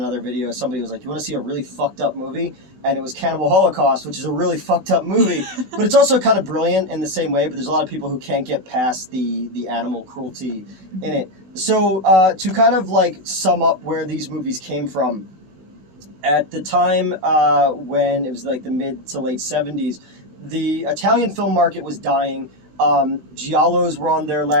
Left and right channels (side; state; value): left; late; 16 ms